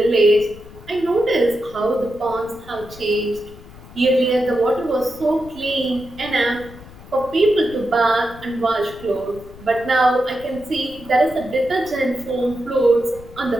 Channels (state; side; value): noise; left; rumble, 18 dB below the sound